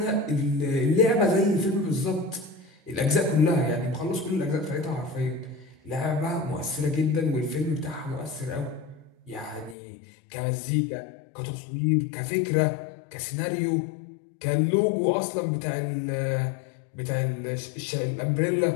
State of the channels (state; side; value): drops out; right; at 9.8 s